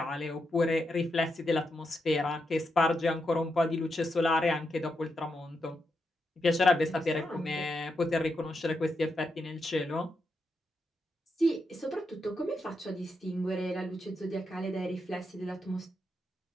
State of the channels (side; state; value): both; normal; correlation 0.84